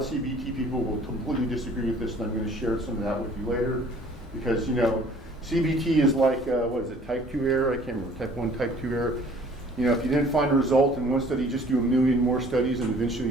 CBT people will completely disagree with this, and I'm going to share some of that with you later, because, you know, CBT is like, what is it, type 2 error? I can't remember, type 1, type 2 error. You know, if you didn't find a result in one study, just do a million more studies, and eventually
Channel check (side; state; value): both; normal; correlation 0.53